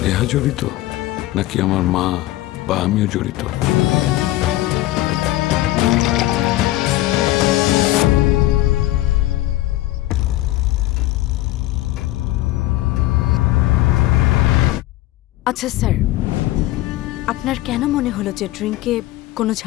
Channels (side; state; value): right; quieter; 16.0 dB